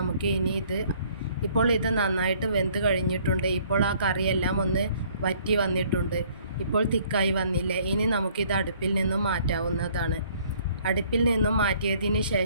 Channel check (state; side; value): inverted; both; correlation -0.60